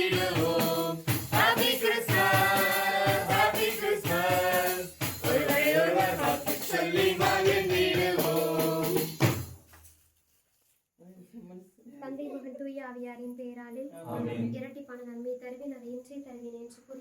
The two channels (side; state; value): both; identical; correlation 1.00